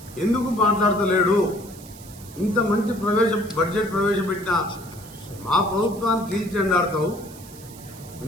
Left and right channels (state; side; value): noise; right; hiss, 19 dB below the sound